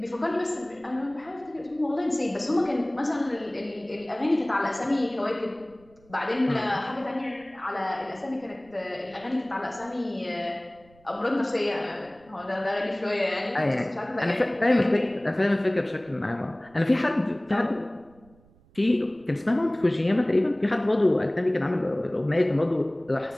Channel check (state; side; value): noise; right; rumble, 29 dB below the sound